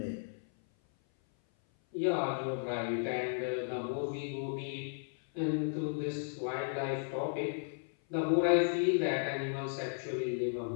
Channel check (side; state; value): right; silent; 55 dB below the other